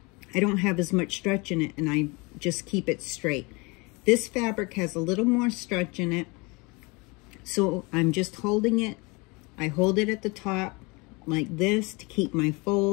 I don't have as much stretch in it, and I just keep it straight. This fabric has a little more stretch in it, so I'm just holding it. I hold it at the top like this to keep my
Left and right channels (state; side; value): quieter; right; 27.2 dB